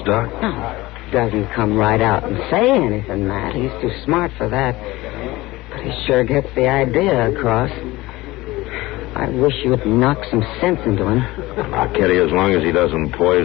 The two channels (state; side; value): quieter; right; 19.4 dB